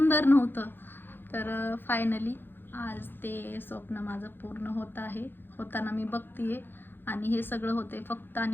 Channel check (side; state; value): right; late; 0.099 ms